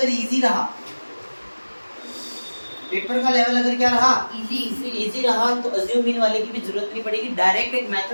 इजी रहा, पेपर का लेवल अगर क्या रहा, इजी रहा, तो अज्यूम मीन वाले की भी जरूरत नहीं पड़ेगी। डायरेक्ट एक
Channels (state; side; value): inverted; both; correlation -1.00